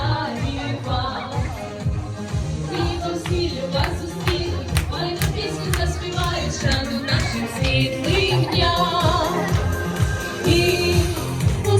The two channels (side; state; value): both; identical; correlation 1.00